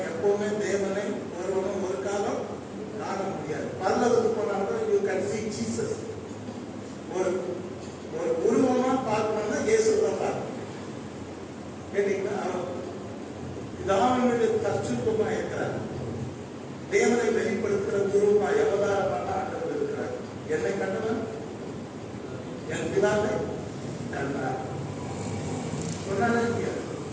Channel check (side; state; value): both; identical; correlation 1.00